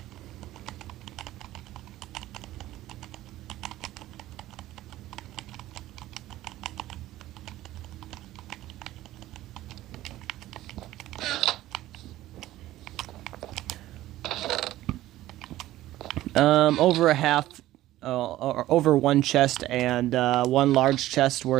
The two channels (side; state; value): left; quieter; 15.2 dB